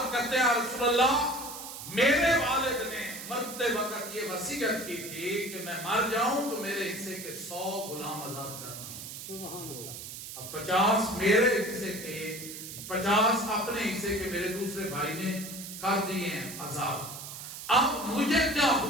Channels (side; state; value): right; noise; hiss, 10 dB below the sound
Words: کرتے ہیں رسول اللہ میرے والد نے مرتے وقت یہ وصیت کی تھی کہ میں مر جاؤں تو میرے حصے کے 100 غلام آزاد کرنا۔ سبحان اللہ۔ اب 50 میرے حصے کے، 50 اپنے حصے کے میرے دوسرے بھائی نے کر دیے ہیں آزاد۔ اب مجھے کیا